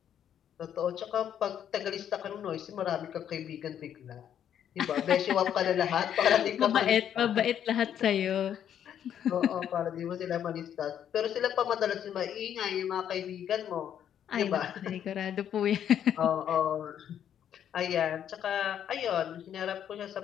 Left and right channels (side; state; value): right; quieter; 9.6 dB